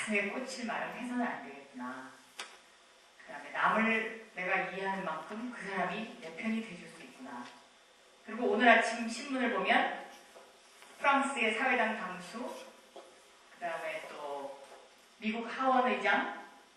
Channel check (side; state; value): both; identical; correlation 1.00